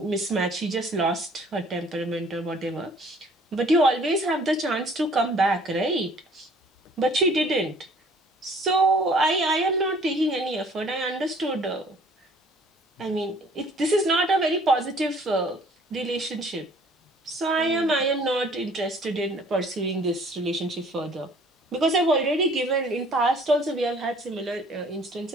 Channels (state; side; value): normal; both; correlation 0.55